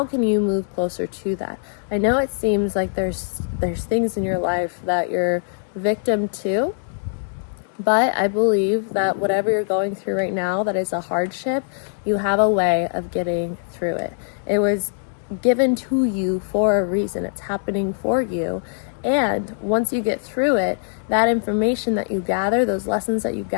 can you move closer to that? I know it seems like there's things in your life that you're victim to. But I believe that whatever you're going through right now that is a hardship, you have a way of getting through it. It was given to you for a reason. It's happening for you. And once you get through it, that information that you gather, those lessons that you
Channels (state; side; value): silent; right; digital silence